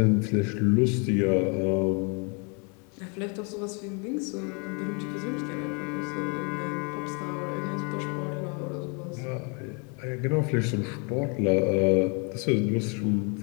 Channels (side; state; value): right; quieter; 35.0 dB